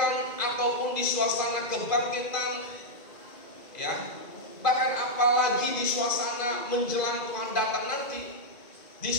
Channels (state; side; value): late; right; 2.5 ms